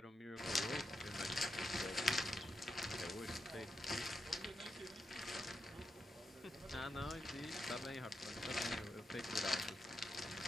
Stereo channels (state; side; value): normal; both; correlation 0.86